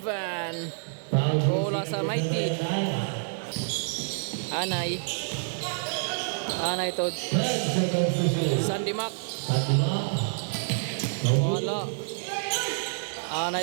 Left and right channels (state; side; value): silent; left; digital silence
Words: Bola sa Mighty. Anay to Sandy Mac. Wala.